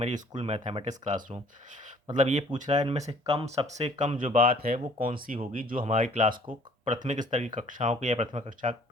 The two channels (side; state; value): both; normal; correlation 0.55